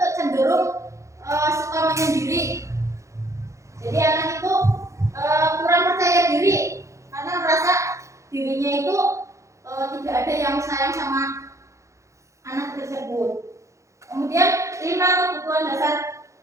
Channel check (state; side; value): late; left; 0.15 ms